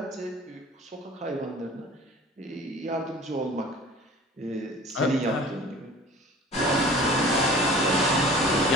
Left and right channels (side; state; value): both; normal; correlation 0.43